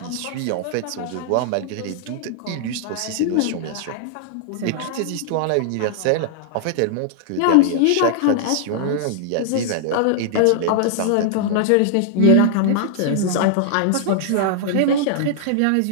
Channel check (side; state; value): both; different; correlation -0.01